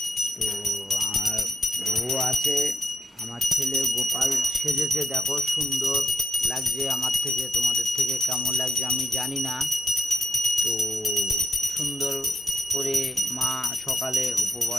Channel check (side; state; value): both; normal; correlation 0.82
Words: তো আর বউ আছে, আমার ছেলে গোপাল সেজেছে, দেখো সুন্দর লাগছে। আমার থেকে তোমাদের থেকে কেমন লাগছে আমি জানি না। তো সুন্দর করে মা সকালে